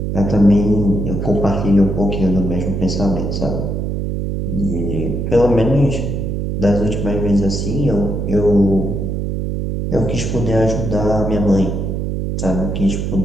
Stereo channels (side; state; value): right; noise; hum, 2 dB below the sound